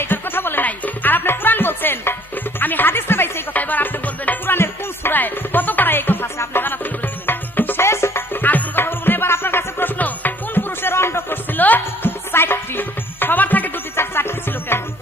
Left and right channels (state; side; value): normal; both; correlation 0.58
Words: এটার কথা বলে নাই। আর আপনি কুরআন বলছেন, আমি হাদিসে পাইছি এই কথা। এবার আপনি বলবেন কুরআনের কোন সূরায় কত পারা এই কথা আছে, আপনি জানা তুলে বলে দেবেন। শেষ, আর কোন কথা বলবো না। এবার আপনার কাছে প্রশ্ন, কোন পুরুষের অন্ডকোষ ছিল ৪টি? সবার থাকে ২টি, ৪টি ছিল কেন?